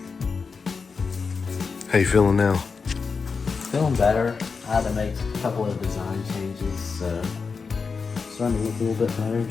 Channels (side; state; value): right; quieter; 5.1 dB